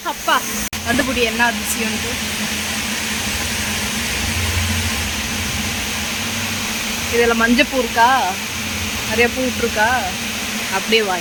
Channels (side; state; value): both; identical; correlation 1.00